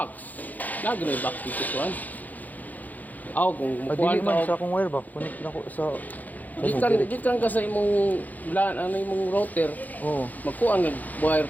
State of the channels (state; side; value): late; right; 0.081 ms